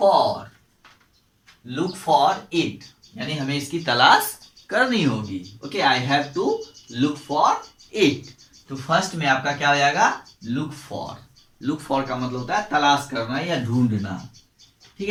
look for it, यानी हमें इसकी तलाश करनी होगी। Okay, I have to look for it. तो फर्स्ट में आपका क्या हो जाएगा, लुक फॉर। लुक फॉर का मतलब होता है तलाश करना या ढूंढना। ठीक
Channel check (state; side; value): identical; both; correlation 1.00